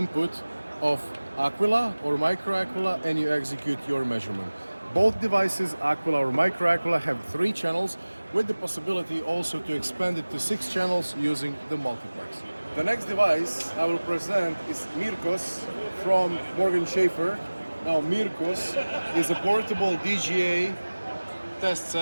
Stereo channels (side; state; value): both; inverted; correlation -1.00